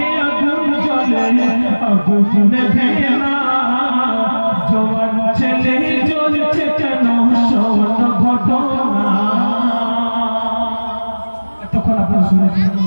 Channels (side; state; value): both; inverted; correlation -1.00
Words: আগুন জ্বলে আগুন নেভে না, জওয়ান ছেলে জ্বলছে কেন শোন ঘটনা। তখন আপনারা শুনেছেন